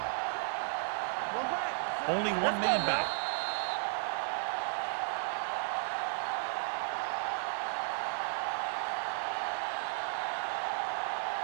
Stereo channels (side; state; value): left; silent; digital silence